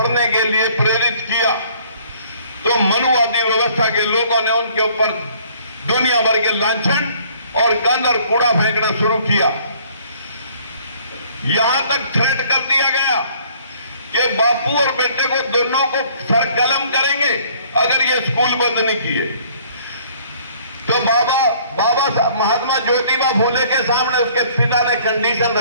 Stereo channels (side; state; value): both; inverted; correlation -0.58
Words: के लिए प्रेरित किया, तो मनुवादी व्यवस्था के लोगों ने उनके ऊपर दुनिया भर के लांछन और गंद और कूड़ा फेंकना शुरू किया। यहां तक थ्रेट कर दिया गया कि बापू और बेटे को दोनों को सर कलम करेंगे अगर ये स्कूल बंद नहीं किए। तो बाबा महात्मा ज्योतिबा फूले के सामने उसके पिता ने कंडीशन